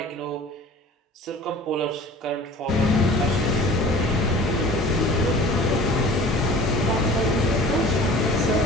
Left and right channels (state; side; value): normal; both; correlation 0.44